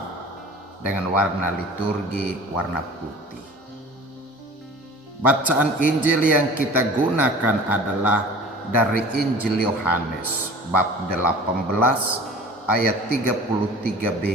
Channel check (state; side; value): normal; both; correlation 0.42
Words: dengan warna liturgi warna putih. Bacaan Injil yang kita gunakan adalah dari Injil Yohanes bab 18 ayat